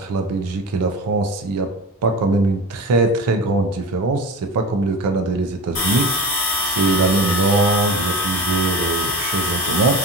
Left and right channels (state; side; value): normal; both; correlation 0.30